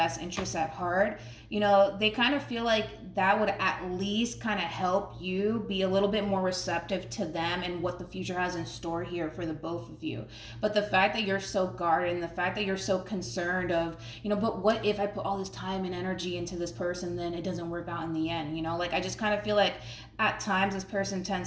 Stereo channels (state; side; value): identical; both; correlation 1.00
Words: interests at heart. You know, they kind of feel like that would at least kind of help you be a little bit more receptive to them and what the future has in store here for the both of you. But the fact that you're so guarded and the fact that you're so concerned of, you know, but what if I put all this time and energy into this person, then it doesn't work out in the end, you know? Like, I just kind of feel like at times this person